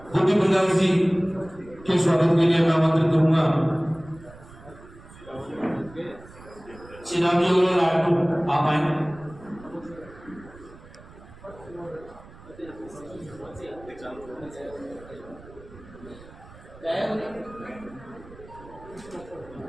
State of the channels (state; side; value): noise; right; rumble, 20 dB below the sound